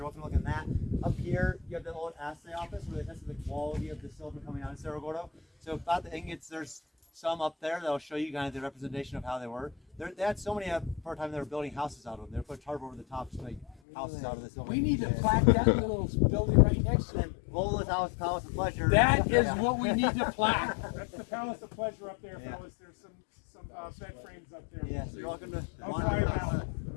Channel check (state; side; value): drops out; right; at 13.8 s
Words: welcome to look at that. Up here, you have the old assay office where they tested the quality of the silver coming out of Cerro Gordo. So about the ingots, there's some up there that'll show you kind of the representation of how they were. They had so many for a time they were building houses out of them. They would put tarp over the top to make houses out of the silver. We need to plaque that little building right next to it. Vola's House, Palace of Pleasure. That is what we need to plaque. That's the Palace of Pleasure up there, Yeah. fellas. There's some bed frames up there. Yeah, so you're welcome to I'll wander try it around.